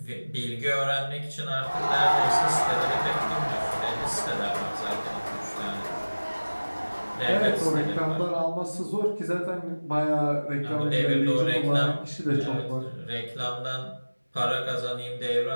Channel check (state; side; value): inverted; both; correlation -1.00